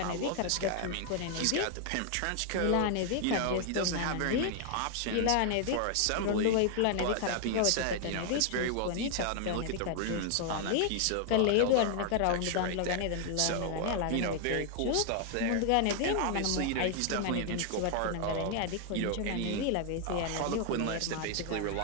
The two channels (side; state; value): both; different; correlation 0.00